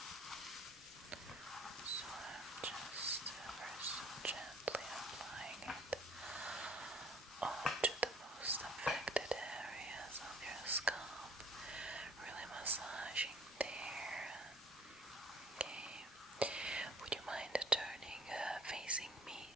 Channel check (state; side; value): normal; both; correlation 0.53